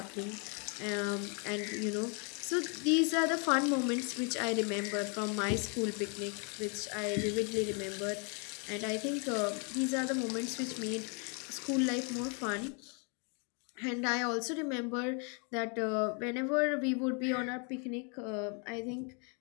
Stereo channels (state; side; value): quieter; right; 37.2 dB